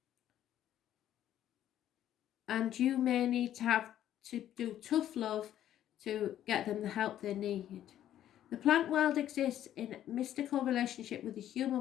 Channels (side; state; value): right; quieter; 11.6 dB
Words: And you may need to have to do tough love to get them the help they need. The plant world exists in mystical relationship with the